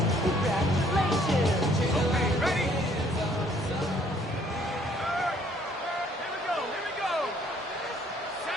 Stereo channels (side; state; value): both; normal; correlation 0.62